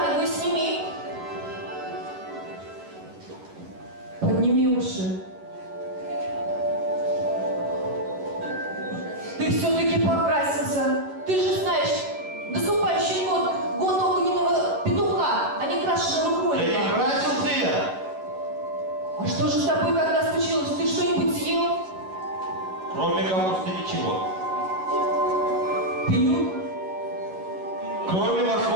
сними. Подними уши. Ты все-таки покрасился. Ты же знаешь, наступающий год огненного петуха, а не крашеного Да кролика. не красился я. А что же с тобой когда случилось? Ты что-нибудь съел? Кроме капусты ничего. Пил? Кроме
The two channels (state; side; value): late; left; 11 ms